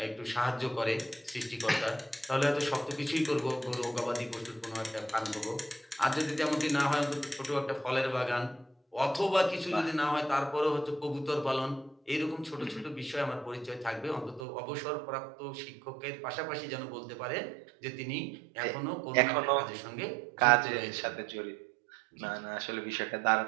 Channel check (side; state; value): left; drops out; at 14.4 s